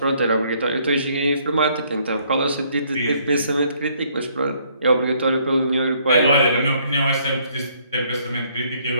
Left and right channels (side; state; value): both; inverted; correlation -0.66